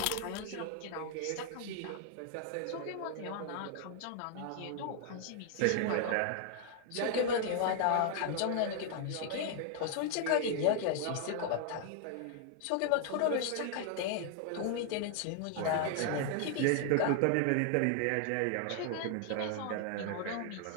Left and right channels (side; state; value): both; different; correlation 0.00